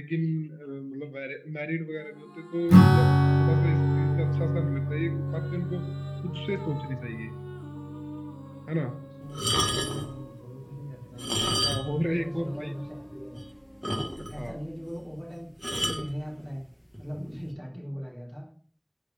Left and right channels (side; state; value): both; identical; correlation 1.00